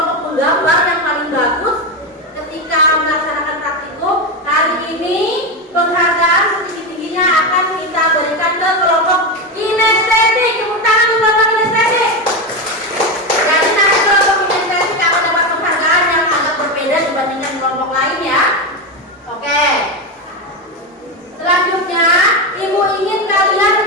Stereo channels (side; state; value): both; normal; correlation 0.14